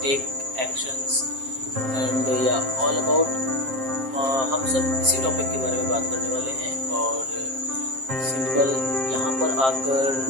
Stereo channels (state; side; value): late; left; 7.5 ms